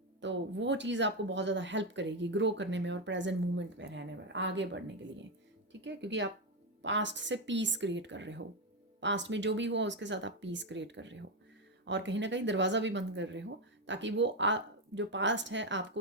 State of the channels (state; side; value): normal; both; correlation 0.07